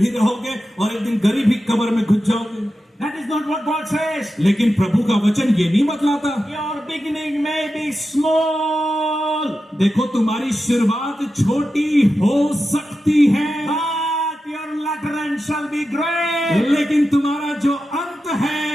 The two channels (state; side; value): normal; both; correlation 0.91